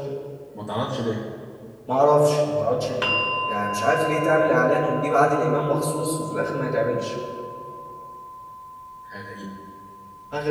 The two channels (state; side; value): identical; both; correlation 1.00